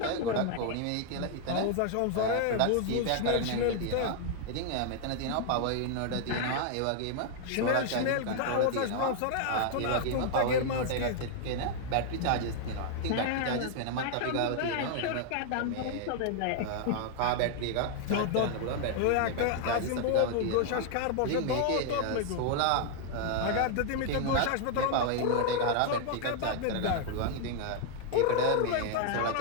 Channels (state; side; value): different; both; correlation 0.00